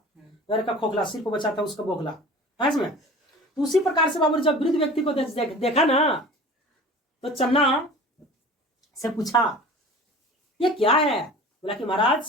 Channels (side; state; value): both; normal; correlation 0.40